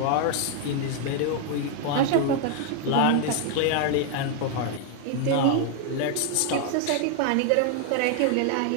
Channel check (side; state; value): both; different; correlation 0.00